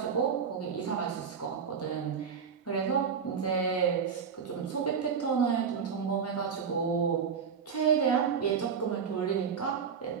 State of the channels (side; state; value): left; quieter; 6.6 dB